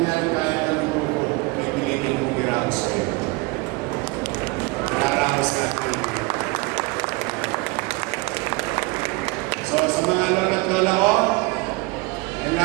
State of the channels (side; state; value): left; quieter; 25.0 dB